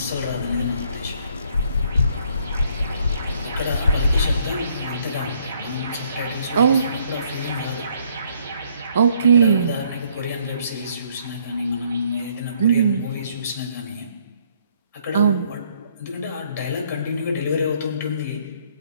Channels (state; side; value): inverted; both; correlation -0.66